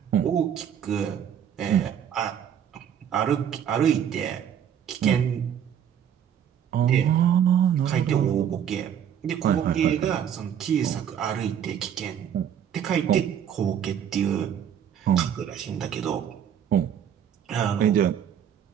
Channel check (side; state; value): left; quieter; 9.1 dB